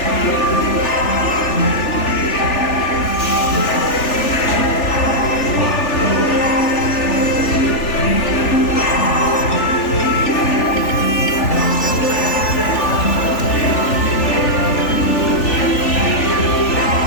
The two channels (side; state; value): right; late; 3.4 ms